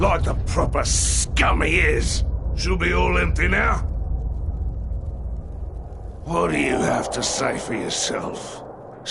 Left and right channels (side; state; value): both; identical; correlation 1.00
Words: the proper scum he is. She'll be all empty now. What do you have to say for yourself,